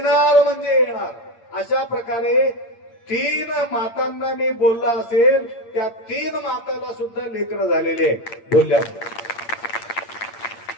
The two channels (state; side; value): late; right; 8.7 ms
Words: म्हणजे येणार. अशा प्रकारे 3 मातांना मी बोलला असेल, त्या 3 माताला सुद्धा लेकरं झालेले बोलल्या.